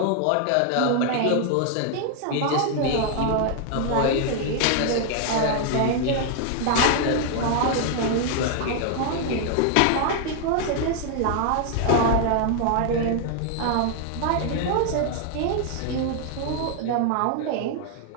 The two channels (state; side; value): different; both; correlation 0.00